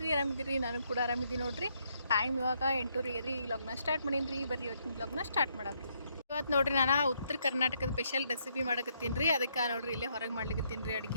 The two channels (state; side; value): inverted; both; correlation -0.74